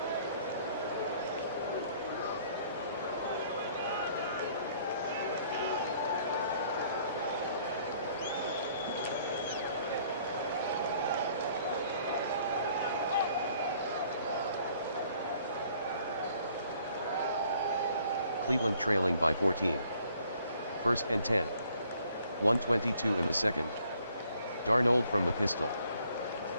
Cleveland trailing by 14. First and 10. 1:22 in the second. Darnold from the pistol.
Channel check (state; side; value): inverted; both; correlation -0.61